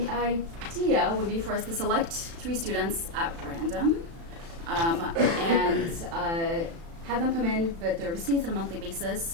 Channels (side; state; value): left; late; 36 ms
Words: idea would be for us to select 3 students at random and have them come in with their receipts on a monthly